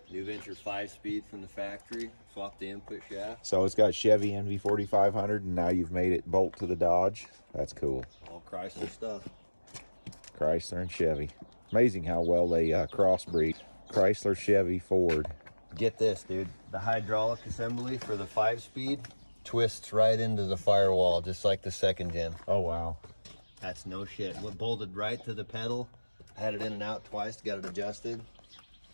New Venture 5-speed from the factory. Swap the input shaft. So it's got Chevy NV 4500, and now you've made it bolt to the Dodge. That's cool. All Chrysler stuff. Chrysler and Chevy. Amazing how well they crossbreed. Chrysler, Chevy, Ford. Get this, dude. The hydraulic assembly for the 5-speed twists right into the firewall, just like the second gen. Oh, wow. That's no shit. What bolted right to the pedal. I had it in and out twice to get it adjusted.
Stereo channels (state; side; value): inverted; both; correlation -1.00